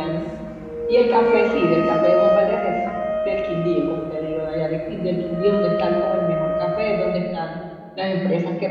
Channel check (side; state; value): both; identical; correlation 1.00